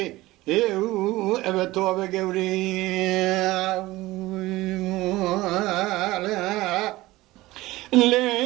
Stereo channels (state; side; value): quieter; left; 18.6 dB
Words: ايو ابا توبا قوري